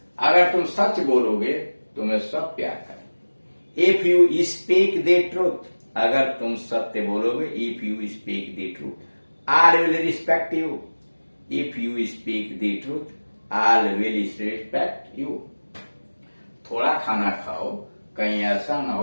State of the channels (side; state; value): both; inverted; correlation -1.00